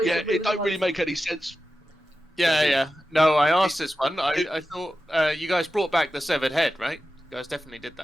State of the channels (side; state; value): both; normal; correlation 0.92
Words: Yeah, it don't really make any sense. Yeah. No, I asked this one. I thought you guys brought back the severed head, right? You guys definitely did